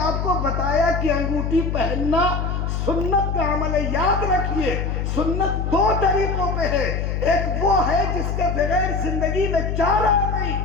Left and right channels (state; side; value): noise; left; hum, 1 dB below the sound